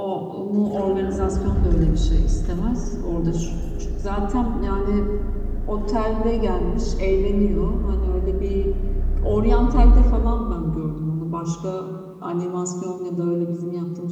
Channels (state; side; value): identical; both; correlation 1.00